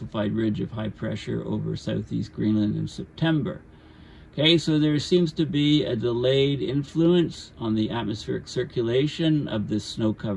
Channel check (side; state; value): both; identical; correlation 1.00